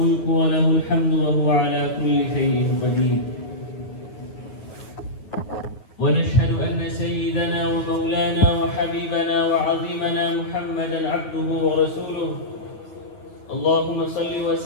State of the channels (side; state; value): right; late; 9.3 ms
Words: وله الحمد وهو على كل شيء قدير ونشهد أن سيدنا ومولانا وحبيبنا وعظيمنا محمدًا عبده ورسوله اللهم صل